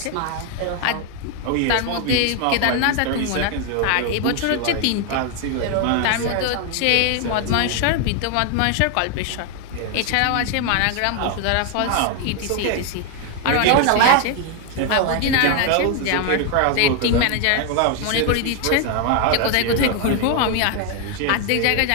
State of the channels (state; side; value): different; both; correlation 0.01